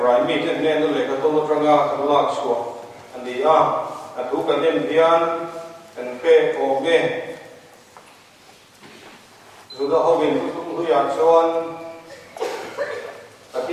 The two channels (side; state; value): both; identical; correlation 1.00